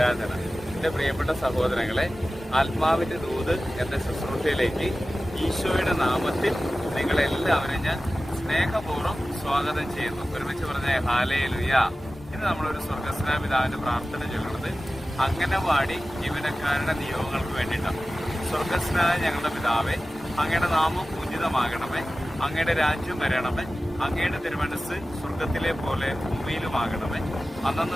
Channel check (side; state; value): both; normal; correlation 0.96